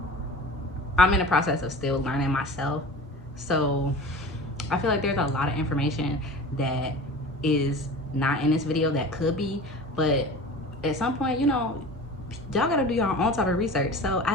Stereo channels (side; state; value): both; normal; correlation 0.37